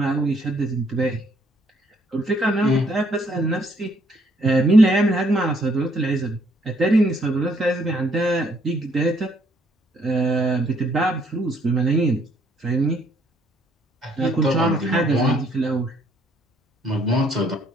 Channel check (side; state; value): both; normal; correlation 0.67